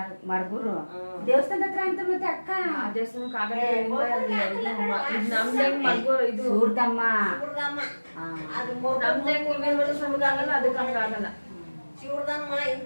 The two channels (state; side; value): inverted; both; correlation -1.00